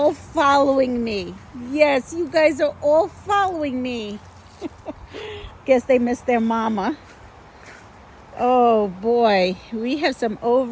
following me. Yes, you guys are all following me. Guess they missed their mama. Oh boy, we have some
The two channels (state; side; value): identical; both; correlation 1.00